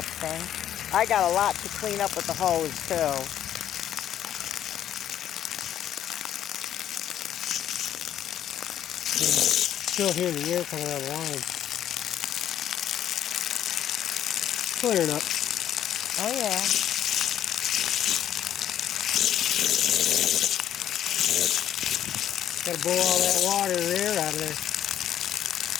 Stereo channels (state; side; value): quieter; right; 10.7 dB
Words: I got a lot to clean up with the hose too. Still hear the air coming out of the line. Clearing up. Oh yeah. Gotta blow all that water and air out of there.